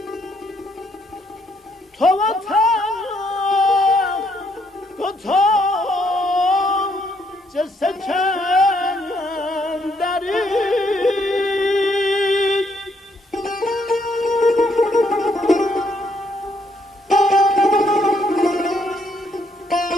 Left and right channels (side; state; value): both; normal; correlation 0.71